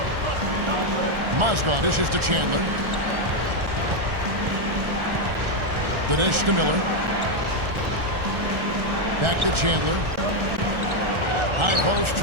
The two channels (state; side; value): late; left; 1.4 ms